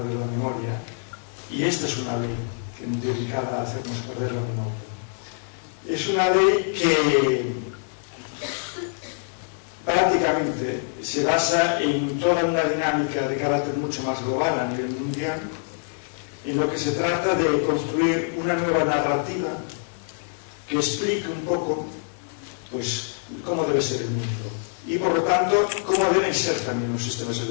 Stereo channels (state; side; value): silent; right; 56 dB below the other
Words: la memoria, y esta es una ley dedicada a hacernos perder la memoria. Es una ley que prácticamente se basa en toda una dinámica de carácter mucho más global a nivel mundial, en lo que se trata de construir una nueva narrativa que explique un poco pues cómo debe ser el mundo y por lo tanto cómo deben ser también los sistemas